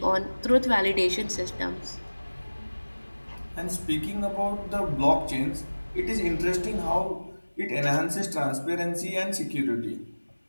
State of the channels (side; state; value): both; inverted; correlation -1.00